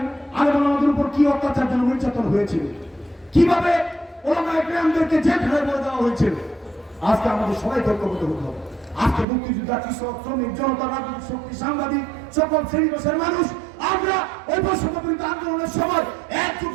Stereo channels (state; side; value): drops out; left; at 9.2 s